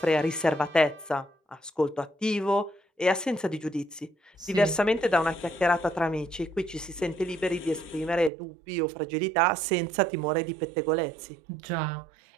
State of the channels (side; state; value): left; drops out; at 8.3 s